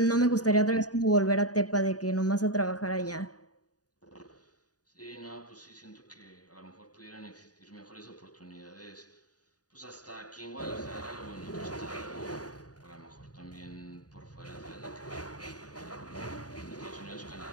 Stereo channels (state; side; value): late; right; 0.68 ms